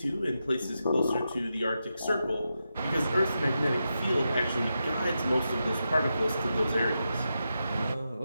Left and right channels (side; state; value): both; inverted; correlation -0.88